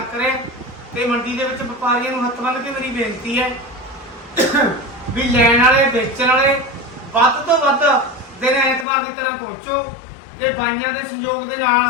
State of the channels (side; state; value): right; drops out; at 8.8 s